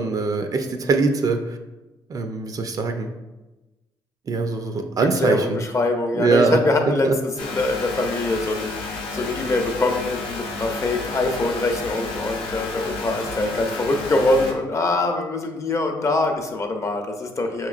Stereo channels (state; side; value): normal; both; correlation 0.66